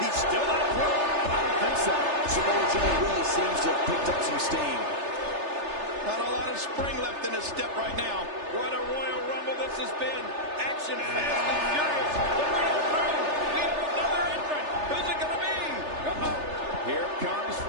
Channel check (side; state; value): left; late; 3.3 ms